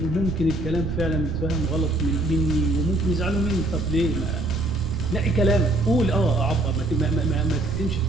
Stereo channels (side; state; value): right; noise; rumble, 7 dB below the sound